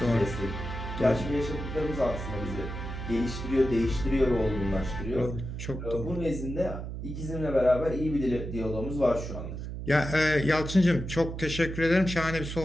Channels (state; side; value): noise; right; hum, 7 dB below the sound